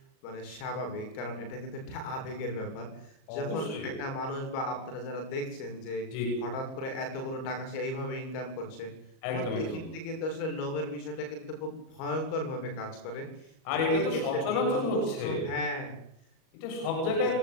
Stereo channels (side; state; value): right; late; 38 ms